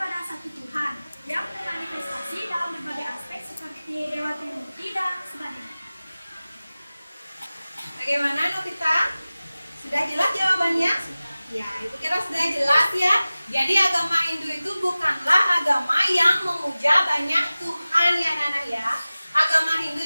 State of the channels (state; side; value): inverted; both; correlation -0.97